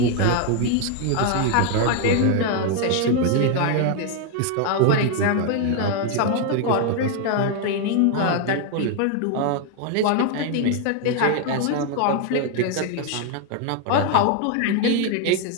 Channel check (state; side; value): different; both; correlation 0.01